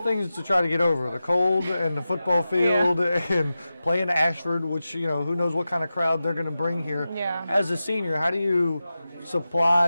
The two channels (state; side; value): inverted; both; correlation -0.93